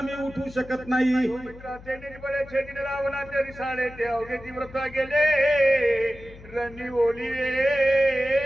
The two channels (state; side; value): noise; left; hum, 19 dB below the sound